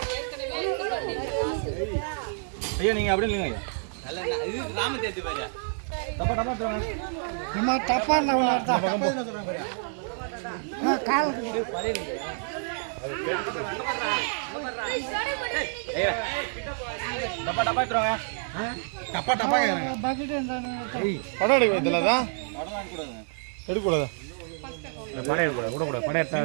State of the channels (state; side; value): silent; left; 59 dB below the other